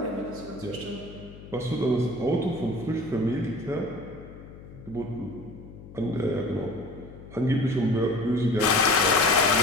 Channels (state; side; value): noise; left; hum, 17 dB below the sound